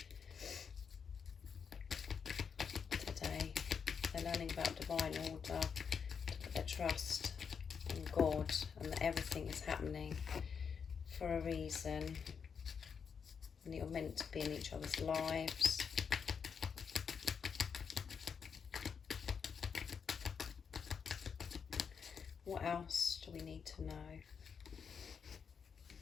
today? They're learning about divine order, to put their trust in God, and that everything is happening for a reason, and you're meant to be in each other's lives. What else do we need to know?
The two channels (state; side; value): quieter; right; 6.5 dB